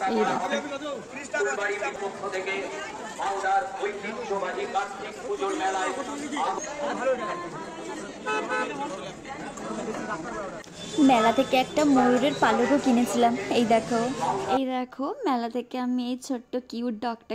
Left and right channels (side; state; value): both; identical; correlation 1.00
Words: এই দেখো, মেলা থেকে একটা ময়ূরের পালকও কিনেছিলাম। এই দেখো, এই দেখো, মেলা থেকে আমি এই ছোট্ট কিউট ডগটা